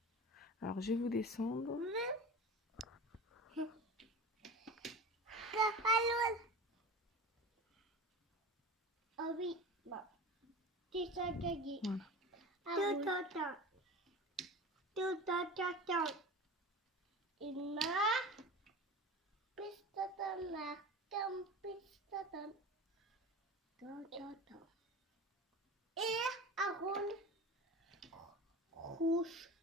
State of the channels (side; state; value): both; normal; correlation 0.33